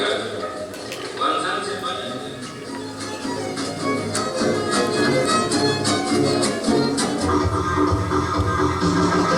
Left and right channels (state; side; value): identical; both; correlation 1.00